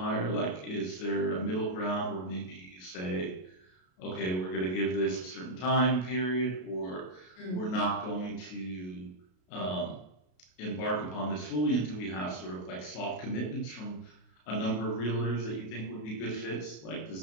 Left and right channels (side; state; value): right; late; 33 ms